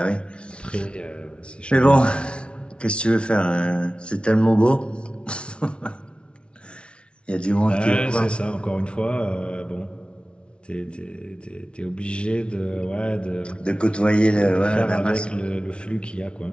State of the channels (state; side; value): late; right; 0.058 ms